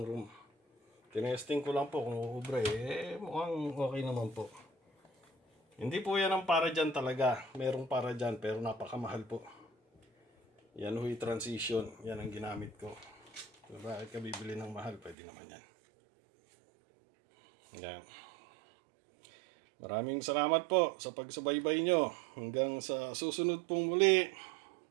room. Tinesting ko lang po kung uubra mukhang okay naman po. Hindi po yan ang para dyan talaga. Merong para dyan pero napakamahal po. Yan huy transition. Yan ang ginamit ko. So, bakit ka bibili ng mahal? Pwede naman yan. Yan. Maraming salamat po sa pagsubaybay nyo. Hanggang sa susunod pong muli.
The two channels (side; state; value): left; drops out; at 15.2 s